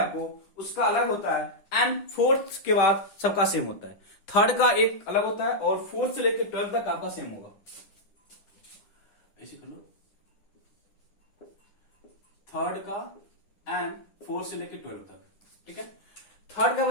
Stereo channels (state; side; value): late; right; 9.9 ms